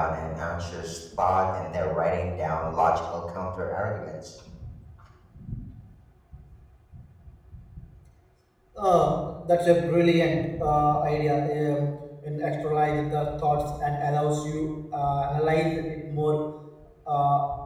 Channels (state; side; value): identical; both; correlation 1.00